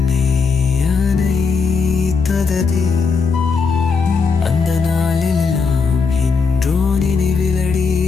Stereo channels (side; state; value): right; quieter; 5.0 dB